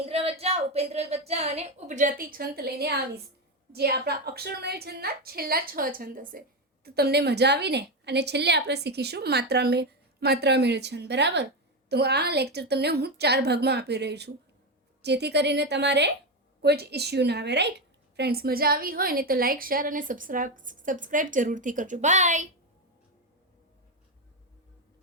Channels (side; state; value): both; normal; correlation 0.11